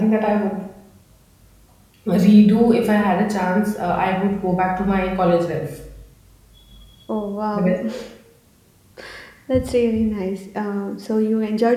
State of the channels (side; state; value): both; identical; correlation 1.00